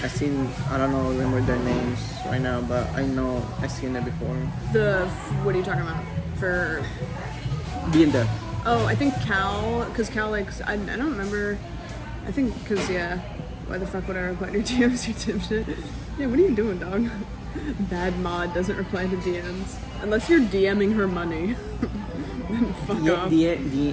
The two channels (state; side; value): identical; both; correlation 1.00